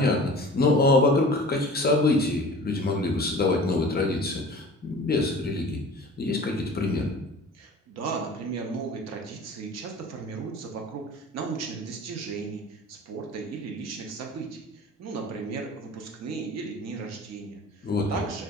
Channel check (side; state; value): both; normal; correlation 0.42